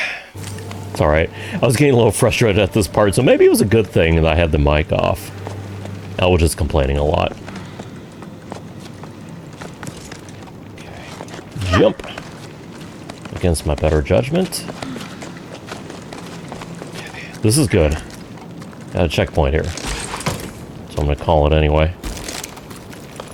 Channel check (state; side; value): identical; both; correlation 1.00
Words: It's alright. I was getting a little frustrated at this part, so maybe it was a good thing that I had the mic off. I was just complaining a lot. Okay. Jump. Against my better judgment. This is good. Got a checkpoint here. So I'm gonna call it anyway.